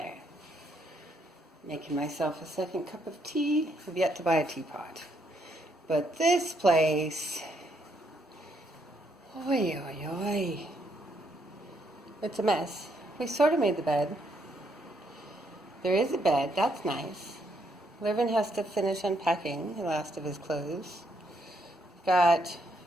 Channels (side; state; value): both; normal; correlation 0.74